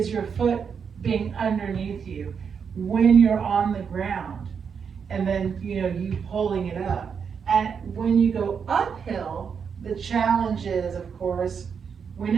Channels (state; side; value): quieter; left; 6.6 dB